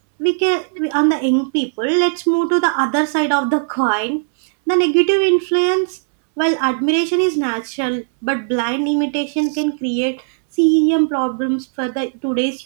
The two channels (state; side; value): silent; left; 68 dB below the other